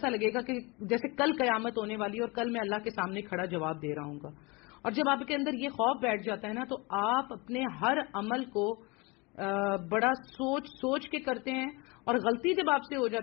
لگے گا کہ جیسے کل قیامت ہونے والی ہے اور کل میں اللہ کے سامنے کھڑا جواب دے رہا ہوں گا. اور جب آپ کے اندر یہ خوف بیٹھ جاتا ہے نا تو آپ اپنے ہر عمل کو بڑا سوچ کے کرتے ہیں. اور غلطی جب آپ سے ہو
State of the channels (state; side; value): quieter; right; 26.6 dB